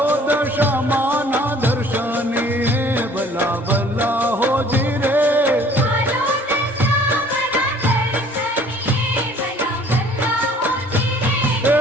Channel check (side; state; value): both; normal; correlation 0.54